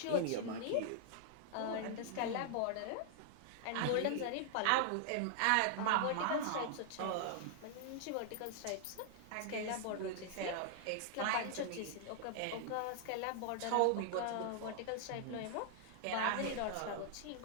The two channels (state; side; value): different; both; correlation -0.01